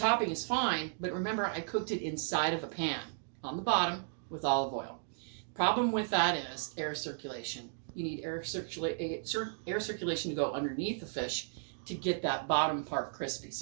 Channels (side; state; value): left; silent; digital silence